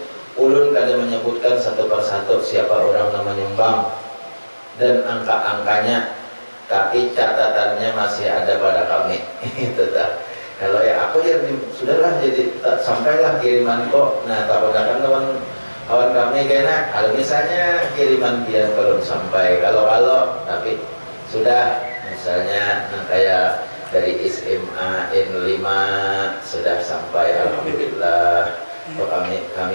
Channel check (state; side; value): inverted; both; correlation -1.00